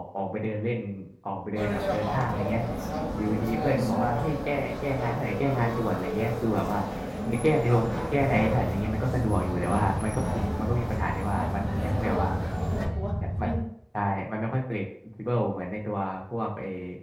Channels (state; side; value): identical; both; correlation 1.00